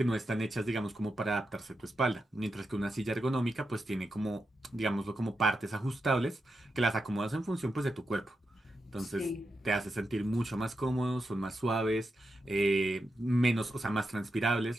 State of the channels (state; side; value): normal; both; correlation 0.87